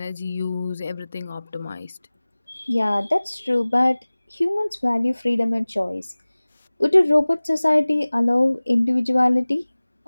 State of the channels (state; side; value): inverted; both; correlation -0.99